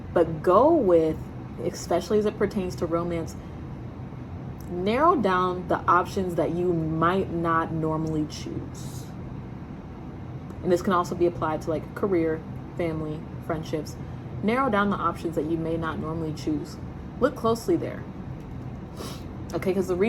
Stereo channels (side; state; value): both; identical; correlation 1.00